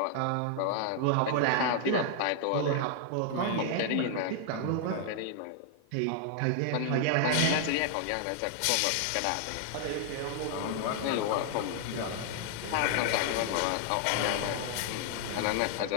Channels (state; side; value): different; both; correlation 0.00